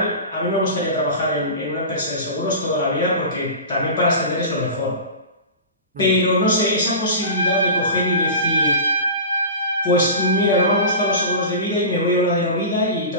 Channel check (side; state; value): both; inverted; correlation -0.31